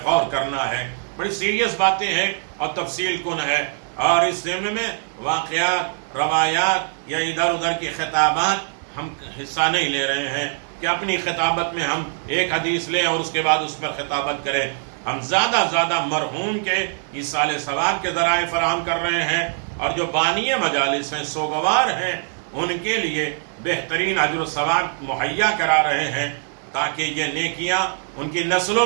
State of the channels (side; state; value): left; silent; 64 dB below the other